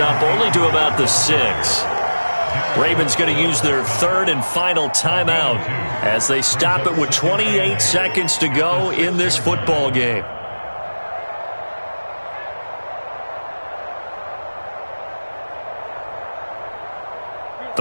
only to about the 6. Ravens going to use their third and final timeout as they stop it with 28 seconds to go in this football game.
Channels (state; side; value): inverted; both; correlation -1.00